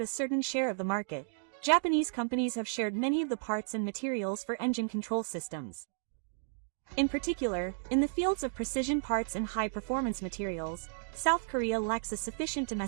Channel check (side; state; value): left; silent; digital silence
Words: a certain share of the market, Japanese companies have shared many of the parts and materials for engine control systems. In particular, in the fields of precision parts and high-performance materials, South Korea lacks a sufficient